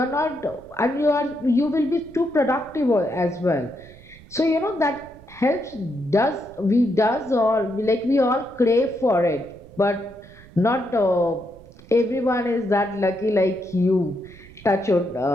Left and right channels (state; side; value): noise; right; rumble, 22 dB below the sound